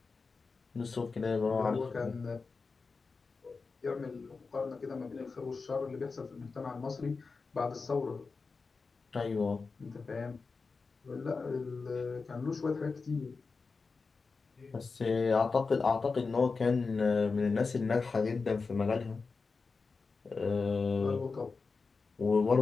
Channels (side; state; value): right; quieter; 4.5 dB